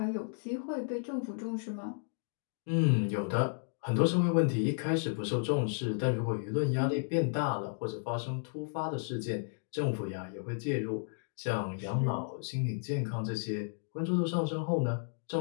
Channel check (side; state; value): right; silent; digital silence